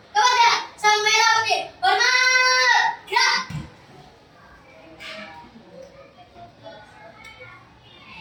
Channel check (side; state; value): both; identical; correlation 1.00